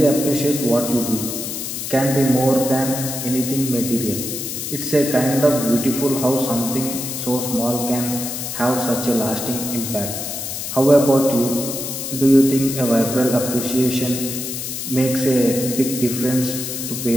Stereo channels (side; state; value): left; noise; hiss, 5 dB below the sound